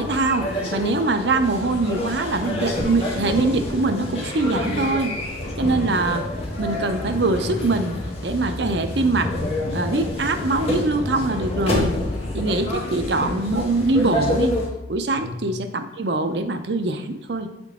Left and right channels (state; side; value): normal; both; correlation 0.36